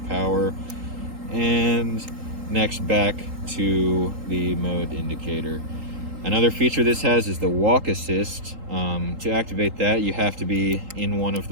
power. And next, back to the mode indicator. Another feature this has is the walk assist. To activate that, you have to be in one of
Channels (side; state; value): left; late; 3.8 ms